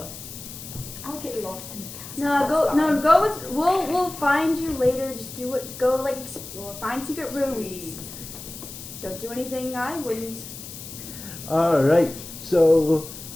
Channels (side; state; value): left; noise; hiss, 12 dB below the sound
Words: I'll get lost in the castle. No, That's go. fine. No, go. With, we'll find you later. Just do it. Go like explore. Find secret rooms. Sweet. Don't do anything I wouldn't. Alright, so